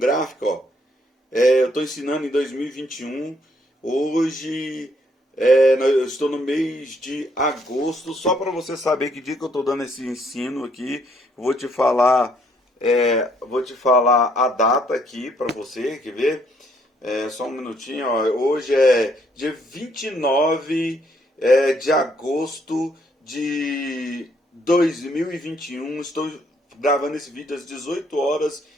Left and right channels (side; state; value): both; normal; correlation 0.69